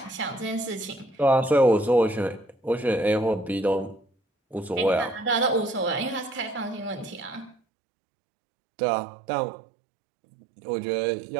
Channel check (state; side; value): drops out; left; at 7.6 s